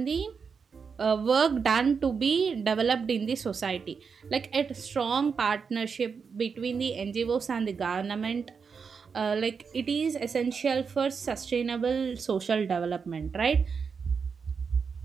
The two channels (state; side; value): quieter; left; 5.8 dB